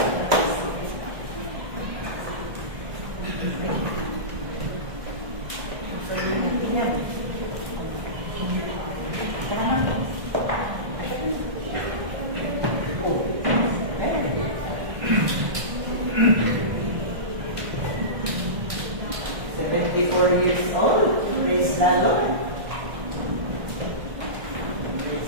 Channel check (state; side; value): late; left; 1.6 ms